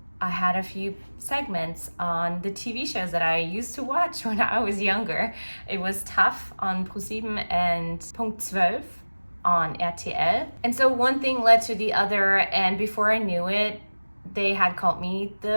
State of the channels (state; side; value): inverted; both; correlation -1.00